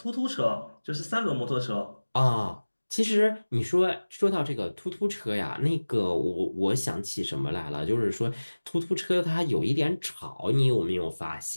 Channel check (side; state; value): both; inverted; correlation -1.00